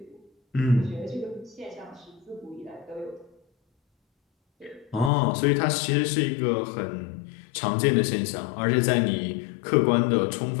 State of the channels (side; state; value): right; drops out; at 5.1 s